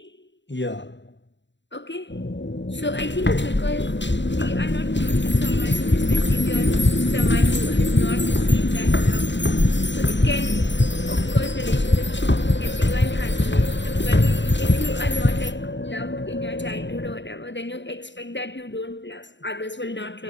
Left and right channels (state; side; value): late; right; 0.53 ms